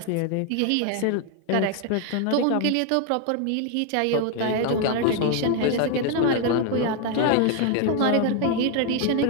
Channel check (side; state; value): both; different; correlation 0.01